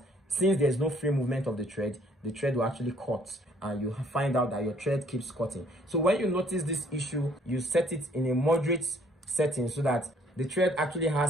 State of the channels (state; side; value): normal; both; correlation 0.62